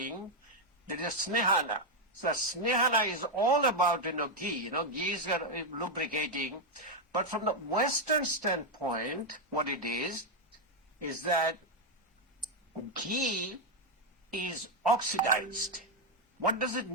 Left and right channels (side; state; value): both; normal; correlation 0.03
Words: there is Snehana. So Snehana is all about, ghee, ghee is lubricating. But from the Western standpoint, what it is that ghee is oxidized. What does it